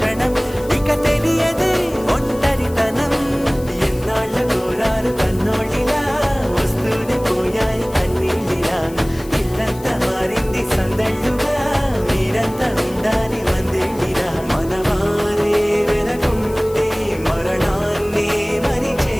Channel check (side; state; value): left; noise; hiss, 20 dB below the sound